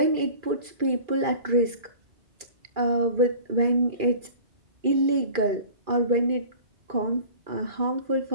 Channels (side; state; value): left; late; 2.4 ms